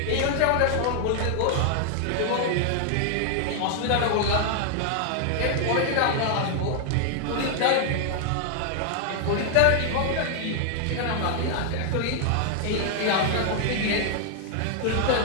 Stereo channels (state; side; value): different; both; correlation 0.00